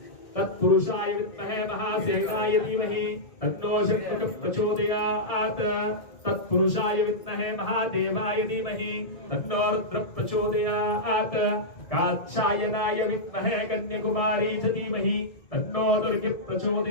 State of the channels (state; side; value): late; right; 1.7 ms